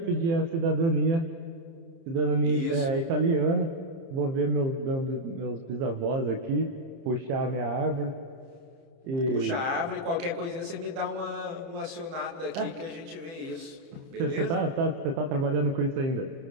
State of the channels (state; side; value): late; left; 30 ms